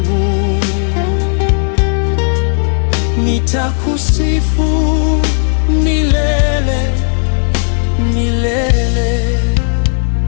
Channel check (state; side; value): silent; right; 65 dB below the other